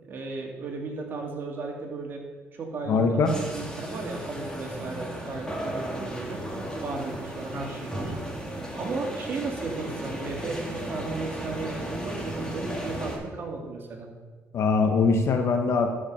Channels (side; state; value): both; normal; correlation 0.62